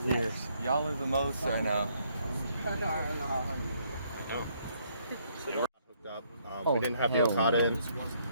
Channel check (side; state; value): both; inverted; correlation -0.69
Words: in Years. Y'all are the most right now. We didn't have the Okada in.